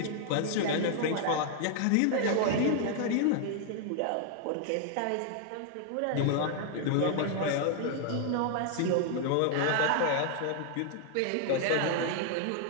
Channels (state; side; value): different; both; correlation 0.00